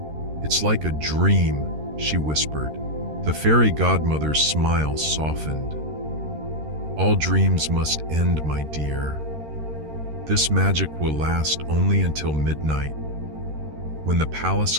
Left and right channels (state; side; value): late; left; 13 ms